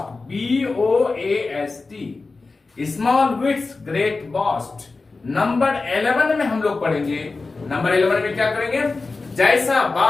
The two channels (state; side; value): quieter; right; 3.8 dB